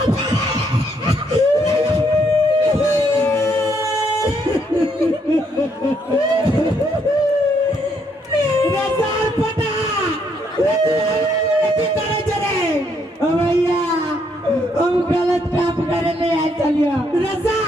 पटा की करे जरे भैया हम गलत काम करे ले आए चलियो रसा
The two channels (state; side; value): normal; both; correlation 0.72